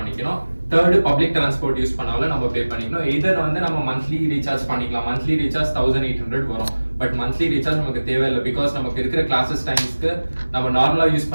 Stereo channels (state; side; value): inverted; both; correlation -1.00